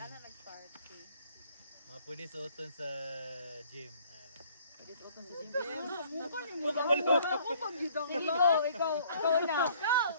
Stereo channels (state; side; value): inverted; both; correlation -0.58